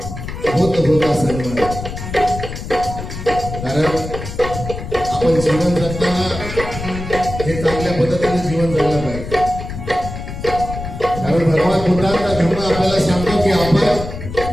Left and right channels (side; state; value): left; noise; rumble, 8 dB below the sound